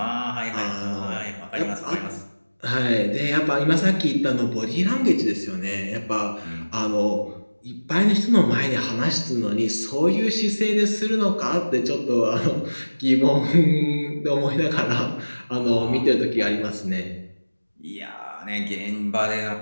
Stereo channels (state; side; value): inverted; both; correlation -1.00